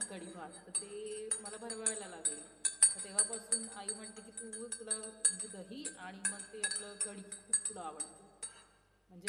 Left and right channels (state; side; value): identical; both; correlation 1.00